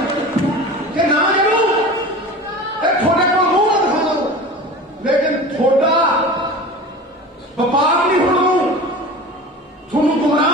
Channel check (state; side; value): normal; both; correlation 0.35